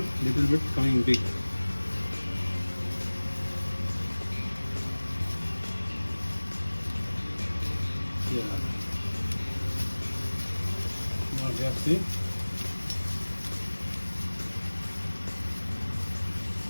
little bit coming big. Yeah. Now we have see.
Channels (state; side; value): inverted; both; correlation -1.00